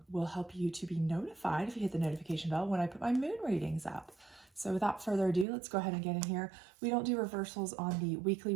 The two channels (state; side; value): drops out; left; at 5.5 s